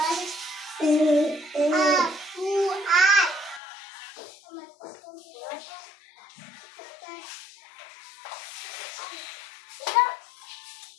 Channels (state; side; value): drops out; right; at 3.6 s